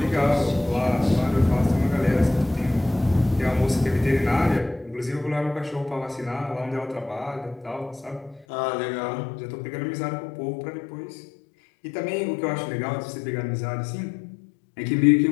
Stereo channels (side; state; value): right; drops out; at 8.5 s